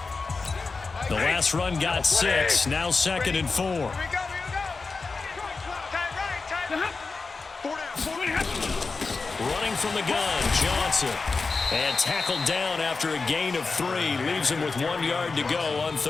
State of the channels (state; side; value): quieter; right; 4.2 dB